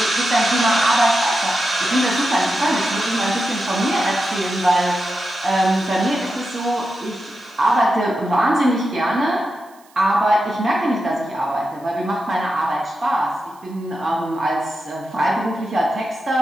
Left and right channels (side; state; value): right; noise; hiss, 29 dB below the sound